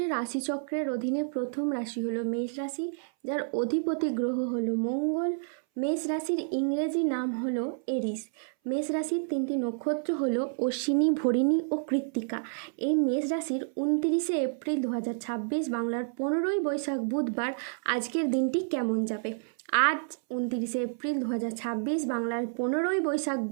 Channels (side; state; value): left; silent; 58 dB below the other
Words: রাশিচক্রের অধীনে প্রথম রাশি হলো মেষ রাশি, যার অধিপতি গ্রহ হলো মঙ্গল। মেষ রাশির ইংরেজি নাম হলো এরিস। মেষ রাশির তিনটি নক্ষত্র হলো অশ্বিনী, ভরিণী ও কৃত্তিকা। এই মেষ রাশির 29 এপ্রিল 2026 বাংলার 15ই বৈশাখ বুধবার আজকের দিনটি কেমন যাবে। আজ 29 এপ্রিল 2026 বাংলার 15ই বৈশাখ